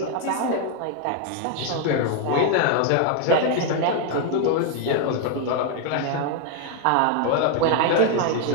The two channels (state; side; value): different; both; correlation 0.00